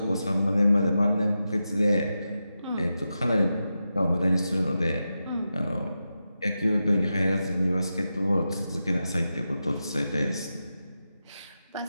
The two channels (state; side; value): inverted; both; correlation -0.90